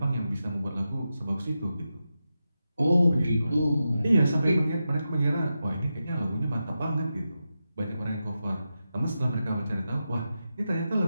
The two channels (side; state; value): both; inverted; correlation -0.90